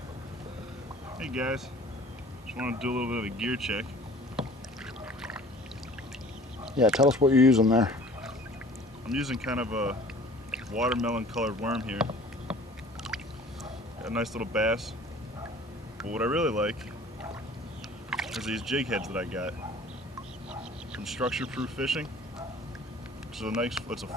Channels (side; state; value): both; normal; correlation 0.48